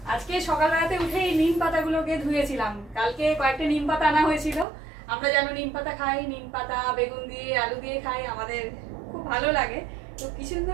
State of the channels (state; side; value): drops out; left; at 4.7 s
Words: আজকে সকালবেলাতে উঠেই নিম পাতাগুলোকে ধুয়েছিলাম। কালকে কয়েকটা নিম পাতা আনা হয়েছিল। আমরা যেন নিম পাতা খাই, নিম পাতা বেগুন দিয়ে আলু দিয়ে খাই, আমাদের খুব ভালো লাগে। তো কিছুদিন